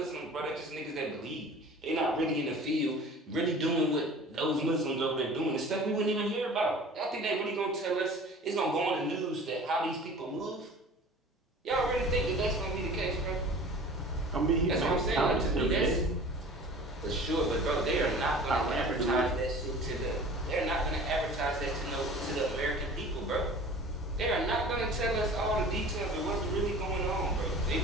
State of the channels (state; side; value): normal; both; correlation 0.43